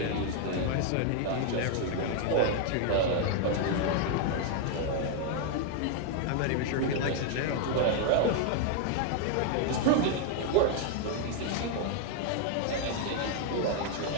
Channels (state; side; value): different; both; correlation 0.00